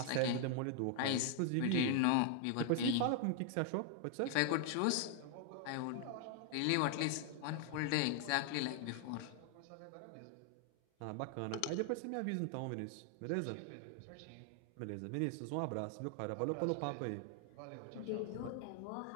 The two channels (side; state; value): both; different; correlation 0.00